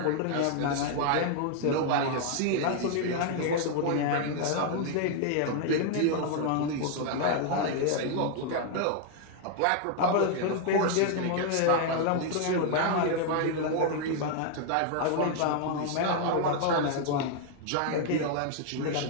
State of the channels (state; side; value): different; both; correlation 0.00